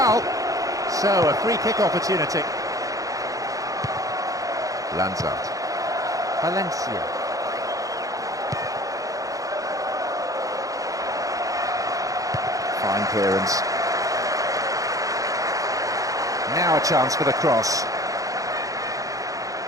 So, a free kick opportunity. Lançado. Valencia. Fine clearance. Now a chance for the cross.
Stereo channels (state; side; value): late; left; 0.17 ms